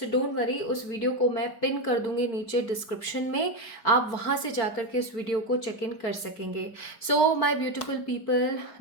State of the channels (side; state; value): right; late; 4.4 ms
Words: डोंट वरी, उस वीडियो को मैं पिन कर दूंगी नीचे डिस्क्रिप्शन में। आप वहाँ से जाकर के इस वीडियो को चेक इन कर सकेंगे। So my beautiful people,